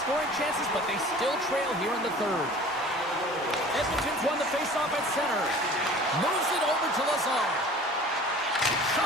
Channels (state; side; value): normal; both; correlation 0.45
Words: chances, but they still trail here in the third. Edmonton's won the faceoff at center. Moves it over to Lazar.